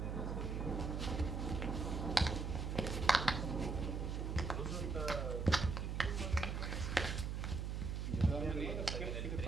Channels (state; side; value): noise; right; hum, 2 dB below the sound